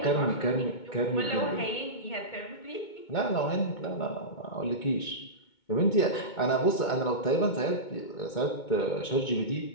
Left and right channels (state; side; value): late; right; 2.2 ms